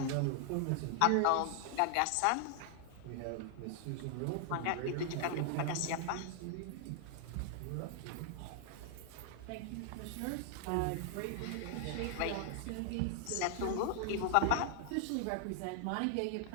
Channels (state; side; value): different; both; correlation 0.00